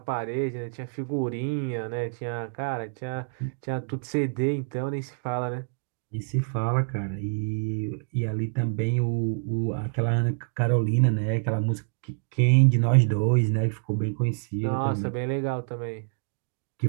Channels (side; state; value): left; silent; digital silence